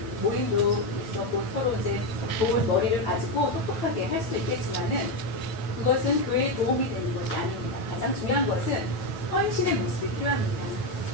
모임도 있었고 서로 이제 좋은 머리를 가지고 똑똑하게 할 수도 있겠지만은 그것은 교회에 도움이 되는 것이 아닙니다. 가장 중요한 것은 헌신의 모습이 필요합니다.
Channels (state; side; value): late; right; 9.3 ms